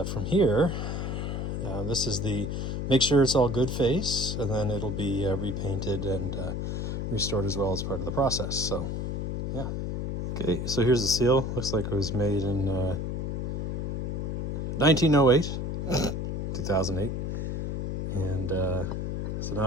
from here, this is the make sure it's all good phase, and then it'll be repainted and restored as well as part of the process. So yeah. Okay, so here's the seal. Looks like it was made in 1908, 2008. And so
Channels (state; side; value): noise; left; hum, 2 dB below the sound